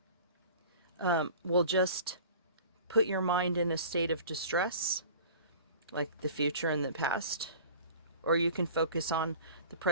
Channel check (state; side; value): inverted; both; correlation -0.43